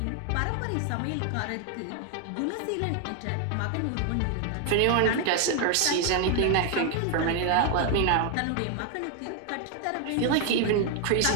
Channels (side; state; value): both; different; correlation 0.00